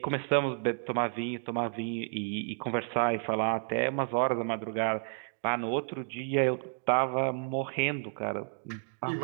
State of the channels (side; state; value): left; silent; 57 dB below the other